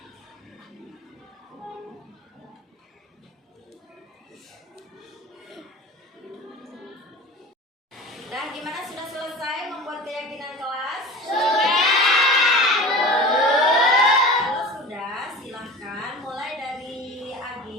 Nah, gimana, sudah selesai membuat keyakinan kelas? Sudah. Kalau sudah, silahkan mulai dari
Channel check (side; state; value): both; normal; correlation 0.35